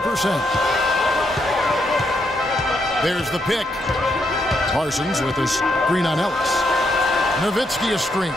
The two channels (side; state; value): both; normal; correlation 0.78